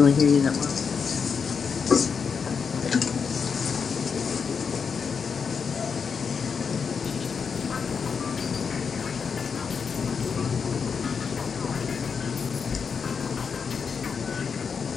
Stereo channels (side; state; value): right; quieter; 6.0 dB